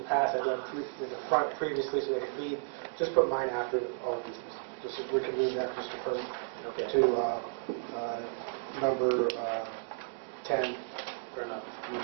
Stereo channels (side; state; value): left; silent; digital silence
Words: past, I done in the front previously so they could read. Just put mine after all of these, just so we can read that, Mr. President, Okay. to number 10. Fair enough.